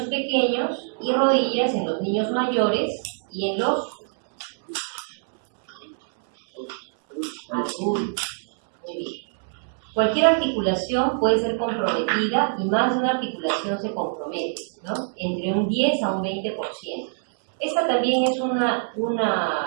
pequeños y rodillas en los niños mayores y en los adultos. Muy bien. Cualquier articulación puede ser comprometida y más de una articulación se compromete, ¿no? Entre un 10 a un 20%. Esta también es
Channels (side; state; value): left; silent; 62 dB below the other